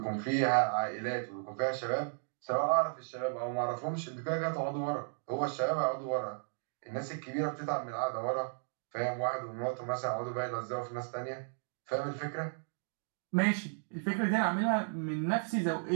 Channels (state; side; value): silent; left; digital silence